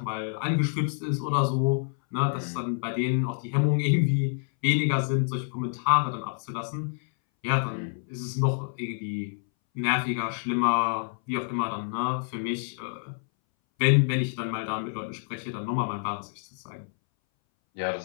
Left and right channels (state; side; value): silent; right; 60 dB below the other